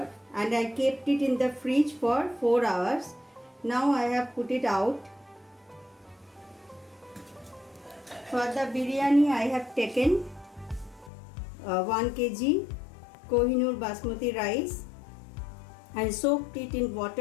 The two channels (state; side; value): drops out; right; at 11.1 s